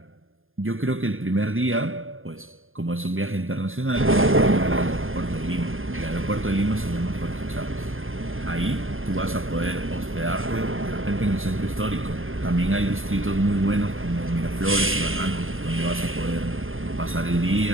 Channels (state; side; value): late; left; 0.59 ms